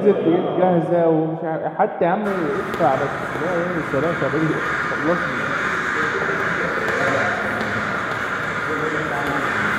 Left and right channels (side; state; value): both; identical; correlation 1.00